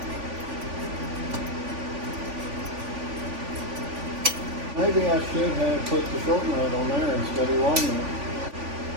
Maybe I should have put the short nut on there instead of long nut.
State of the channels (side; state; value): left; late; 3.5 ms